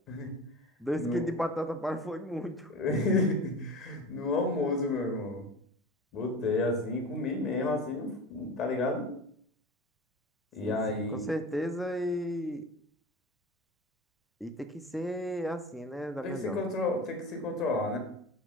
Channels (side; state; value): both; normal; correlation 0.33